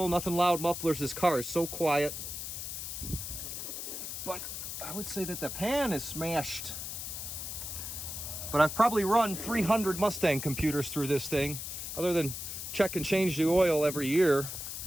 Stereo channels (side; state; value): left; noise; hiss, 6 dB below the sound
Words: nothing loud mufflers. This car is so quiet. But I would say that the pan is smashed. But I've probably run 300 Mustang computers through this thing. Other than check and change the oil every year,